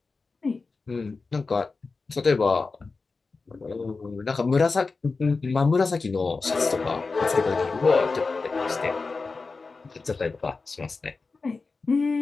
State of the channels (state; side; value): quieter; right; 4.1 dB